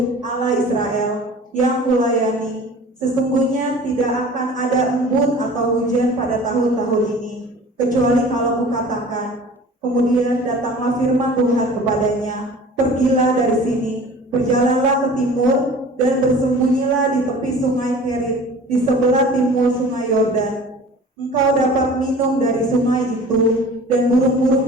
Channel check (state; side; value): normal; both; correlation 0.43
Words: Allah Israel, yang kulayani, sesungguhnya tidak akan ada embun atau hujan pada tahun-tahun ini, kecuali kalau kukatakan. Kemudian datanglah firman Tuhan kepadanya, pergilah dari sini, berjalanlah ke timur, dan bersembunyilah di tepi sungai Kerit, di sebelah timur sungai Yordan. Engkau dapat minum dari sungai itu, dan burung-burung